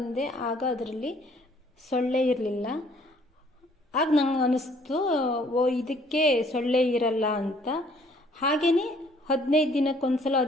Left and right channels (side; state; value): both; normal; correlation 0.60